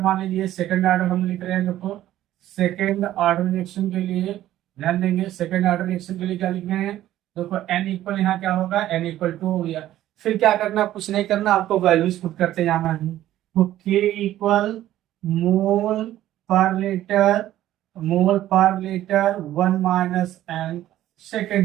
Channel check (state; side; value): quieter; left; 13.4 dB